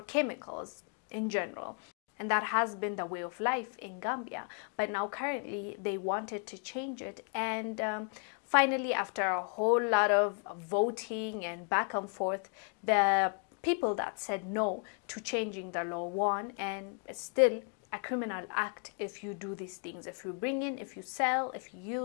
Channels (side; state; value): right; quieter; 39.1 dB